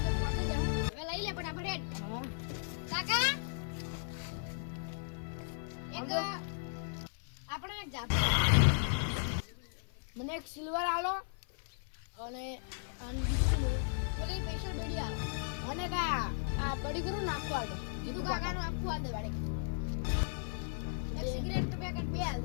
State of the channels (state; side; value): silent; right; 54 dB below the other